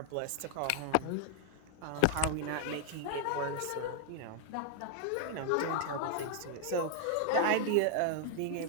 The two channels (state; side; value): different; both; correlation 0.00